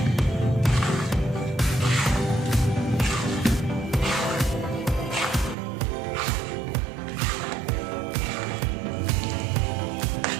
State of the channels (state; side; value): drops out; left; at 5.6 s